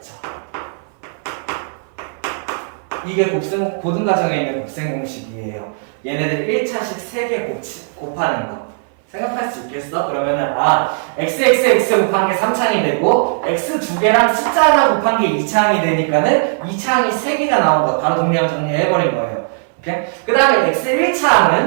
이게 고등과정에 있는 곱셈 공식이에요. 얘네들 1차식 3개 곱하는 거. 생각할 수 있겠어? 그러면은 xxx 곱한 게 3창이 되고 x 두 개랑 숫자 하나 곱한 게 2창이 되니까는 2창이 3개가 나온 거 바로 동량 정리해버린 거예요. 오케이? 그 다음에 x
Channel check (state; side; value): silent; left; 60 dB below the other